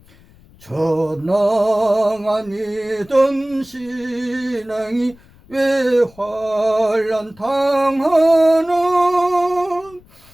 전능하니던 신앙이 왜 환난 당하는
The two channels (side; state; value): left; noise; rumble, 27 dB below the sound